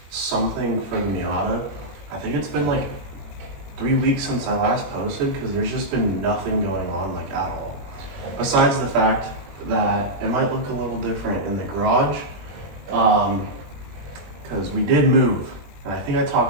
something for the Miata. I think it's been like 3 weeks since I last posted because there's just been nothing going on like at all. Besides the fact that it might look a little different in the garage, because we did move. And I think I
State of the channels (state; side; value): late; left; 21 ms